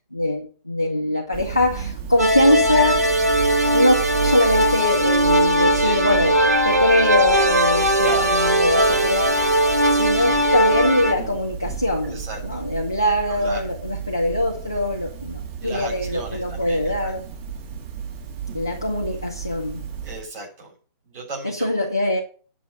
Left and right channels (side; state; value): both; inverted; correlation -0.59